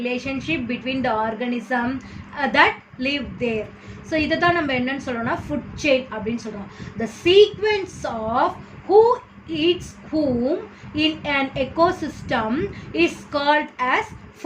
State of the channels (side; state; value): both; identical; correlation 1.00